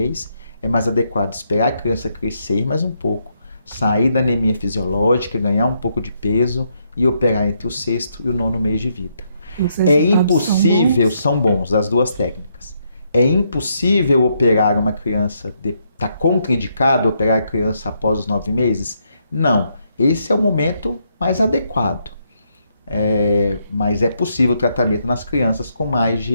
é mais adequado esperar a criança crescer mais um pouco, sair da anemia fisiológica, ganhar um pouco de peso e operar entre o 6º e o 9º mês de vida. É impossível, são bons as 2 técnicas. É impossível operar uma criança, está contraindicado operar a criança após os 9 meses? Não. Esse é o momento mais adequado. Mas é possível o tratamento nas crianças com mais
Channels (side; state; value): both; inverted; correlation -0.76